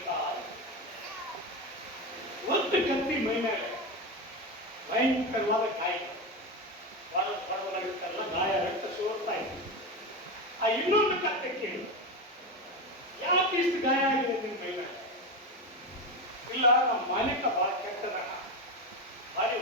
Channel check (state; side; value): normal; both; correlation 0.17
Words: ಒಂದು ಕತ್ತಿ ಮೈ ಮೇಲೆ ಭಯಂಕರವಾದ ಗಾಯ, ಬಡವರಾಗಿರ್ತಾರಲ್ಲ ಗಾಯ, ರಕ್ತ ಸೋರ್ತಾ ಇತ್ತು. ಆ ಇನ್ನೊಂದು ಕತ್ತೆ ಕೇಳಿ, ಯಾಕೆ ಇಷ್ಟು ಗಾಯ ಆಗಿದೆ ನಿನ್ ಮೈ ಮೇಲೆ? ಇಲ್ಲ, ನಮ್ಮ ಮಾಲೀಕ ಬಹಳ ಕೆಟ್ಟದ, ಭಾರಿ